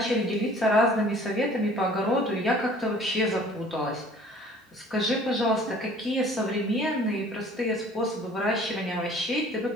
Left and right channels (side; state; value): both; normal; correlation 0.51